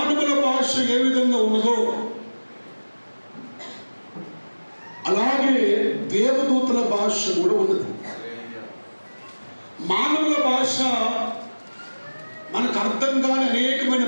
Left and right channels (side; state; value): both; inverted; correlation -1.00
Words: భాష ఏ విధంగా ఉన్నదో అలాగే దేవదూతల భాష కూడా ఉన్నది. మానవుల భాష మనకు అర్థం కాని అనేకమైన